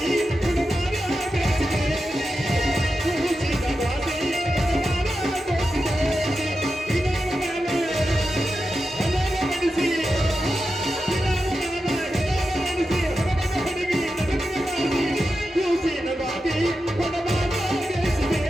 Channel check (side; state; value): both; normal; correlation 0.90